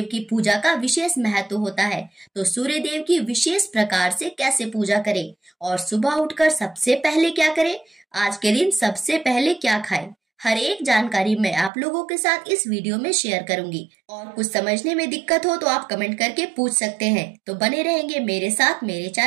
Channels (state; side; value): drops out; left; at 11.7 s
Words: की पूजा का विशेष महत्व होता है, तो सूर्यदेव की विशेष प्रकार से कैसे पूजा करें और सुबह उठकर सबसे पहले क्या करें, आज के दिन सबसे पहले क्या खाएं, हर एक जानकारी मैं आप लोगों के साथ इस वीडियो में शेयर करूंगी। और कुछ समझने में दिक्कत हो तो आप कमेंट करके पूछ सकते हैं। तो बने रहेंगे मेरे साथ मेरे